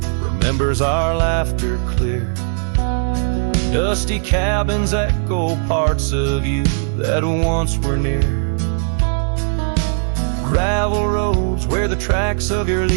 remembers our laughter clear. Dusty cabins echo parts of you that once were near. Gravel roads where the tracks of your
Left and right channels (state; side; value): silent; left; digital silence